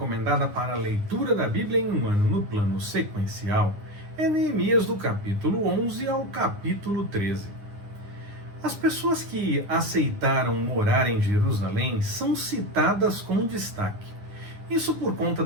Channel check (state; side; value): late; left; 9.8 ms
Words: para a leitura da Bíblia em um ano no plano sequencial é Neemias do capítulo 11 ao capítulo 13. As pessoas que aceitaram morar em Jerusalém são citadas com destaque. Isso por conta